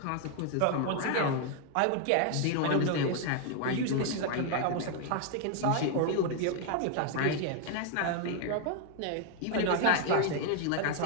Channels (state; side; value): different; both; correlation 0.00